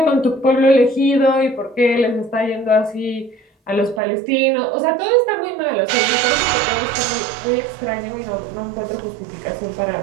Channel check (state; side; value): drops out; left; at 4.0 s